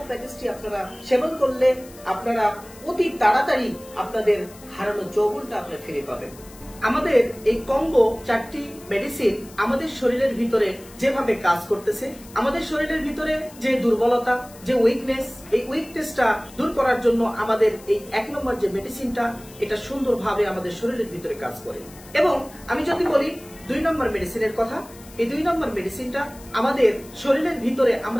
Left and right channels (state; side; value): noise; left; hiss, 21 dB below the sound